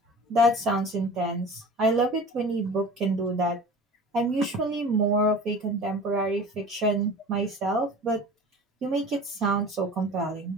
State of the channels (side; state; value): both; normal; correlation 0.39